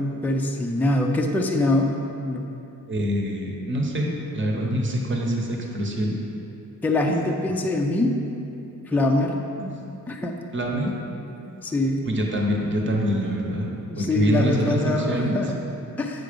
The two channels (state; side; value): normal; both; correlation 0.64